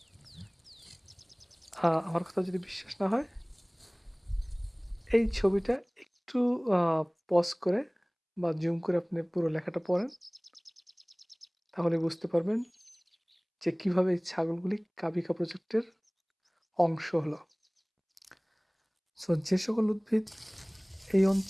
আমার কথা যদি বিশ্বাস না হয়, এই ছবিটা একটু আ পজ করে বা জুম করে আপনি পুরো লেখাটা পড়েন, তাহলে বুঝতে পারবেন যে কিভাবে এই ছাগলগুলি কাবিখা প্রজেক্টের অংশ হলো। যে সকল উদ্ভিদ এই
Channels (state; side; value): identical; both; correlation 1.00